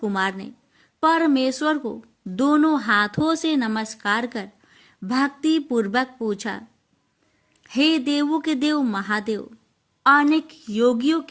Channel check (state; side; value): identical; both; correlation 1.00